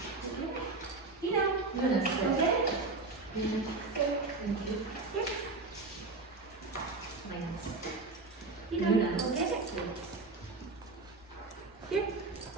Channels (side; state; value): left; quieter; 3.5 dB